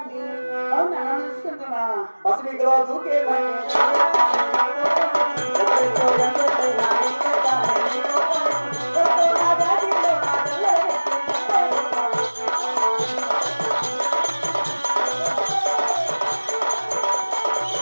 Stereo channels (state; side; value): inverted; both; correlation -1.00